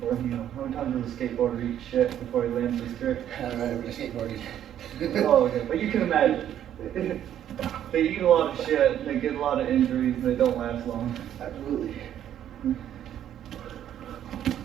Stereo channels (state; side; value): quieter; left; 10.7 dB